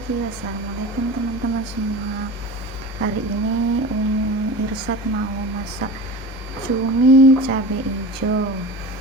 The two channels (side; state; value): both; normal; correlation 0.32